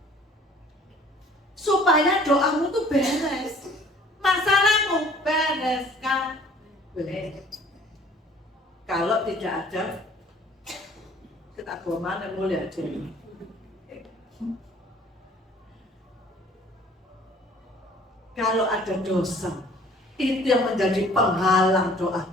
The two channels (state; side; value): normal; both; correlation 0.54